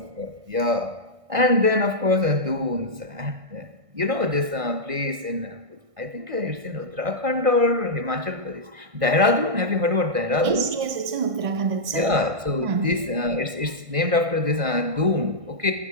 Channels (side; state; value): left; late; 1.6 ms